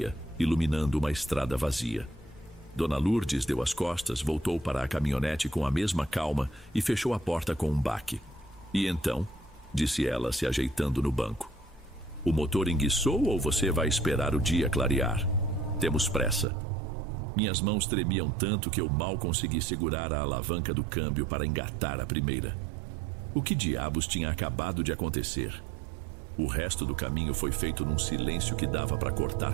iluminando uma estrada vazia. Dona Lourdes deu as costas, voltou para a caminhonete com a mesma calma e fechou a porta com um baque. E então, disse ela, se ajeitando no banco, o motor enguiçou ou você vai esperar o dia clarear? Temos pressa. Minhas mãos tremiam tanto que eu mal consegui segurar a alavanca do câmbio para engatar a primeira. O que diabos tinha acabado de acontecer? O resto do caminho foi feito num silêncio que dava para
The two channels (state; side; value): drops out; left; at 16.4 s